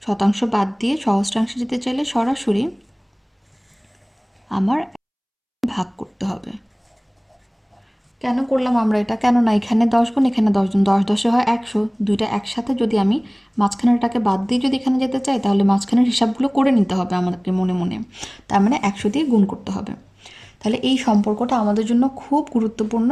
শতাংশ বাদ দিয়ে সহস্রাংশে যেতে চাইলে সরাসরি আমার ভাগ করতে হবে। কেন করলাম আমরা এটা? কেননা এখানে 10 গুণ, এখানে 10 গুণ, 10 10 হয় 100। দুইটা একসাথে যদি আমি মাঝখানেরটাকে বাদ দিয়ে যদি এখানে যেতে চাই তাহলে মাঝখানের হিসাবগুলো করে নিতে হবে আমাদেরকে মনে মনে। তার মানে 100 দিয়ে গুণ করতে হবে। তাহলে এই সম্পর্কটা আমাদের জন্য খুব গুরুত্বপূর্ণ।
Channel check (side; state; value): both; identical; correlation 1.00